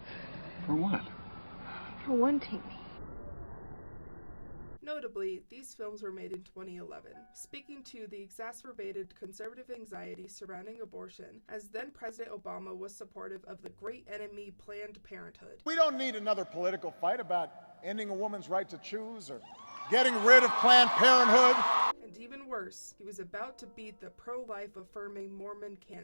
For what? For wanting me. Notably, these films were made in 2011, speaking to the exacerbated conservative anxiety surrounding abortion, as then-President Obama was supportive of the great enemy Planned Parenthood. We don't need another political fight about ending a woman's right to choose or getting rid of Planned Parenthood. And even worse, he was about to beat the pro-life affirming Mormon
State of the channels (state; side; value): inverted; both; correlation -1.00